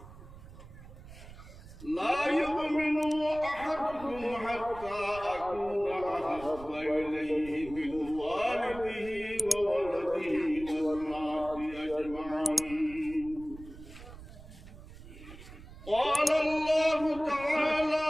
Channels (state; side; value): noise; right; rumble, 16 dB below the sound